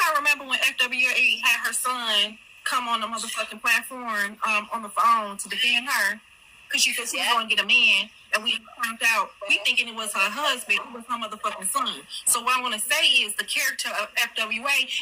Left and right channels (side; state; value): both; identical; correlation 1.00